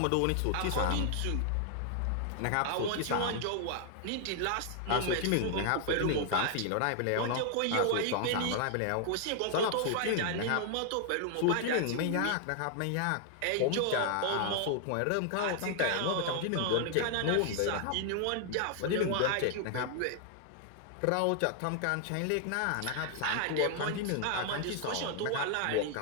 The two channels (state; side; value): different; both; correlation 0.00